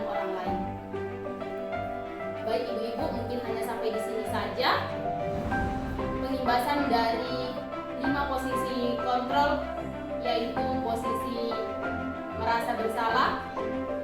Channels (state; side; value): identical; both; correlation 1.00